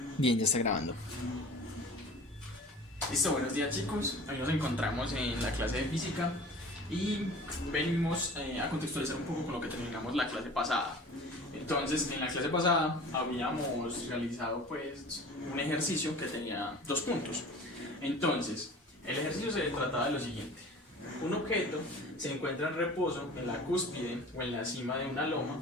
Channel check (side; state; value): both; normal; correlation 0.42